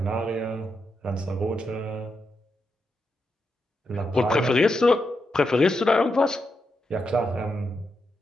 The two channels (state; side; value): normal; both; correlation 0.85